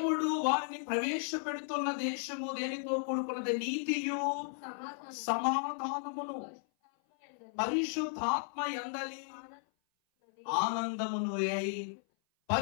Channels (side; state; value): right; silent; 55 dB below the other